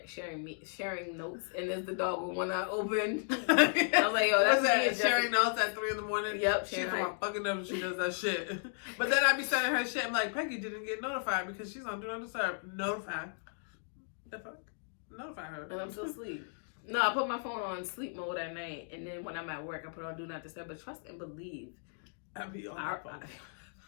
sharing notes, and there's the dog with one eye open. I was like, yo, that's me. Sharing notes at 3 a.m. Yep, she's my fucking up. She does that shit. But then I be sending her shit. I'm like, Peggy didn't get notified because she's on Do Not Disturb. Notified. The fuck? notify her. And I'm still asleep. No, I put my phone on sleep mode at night, and then when I'm at work, I put on do not disturb. But trust and believe, I be on my phone.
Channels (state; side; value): silent; right; digital silence